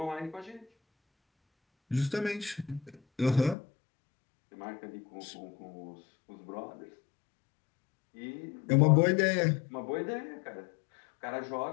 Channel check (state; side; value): drops out; right; at 3.6 s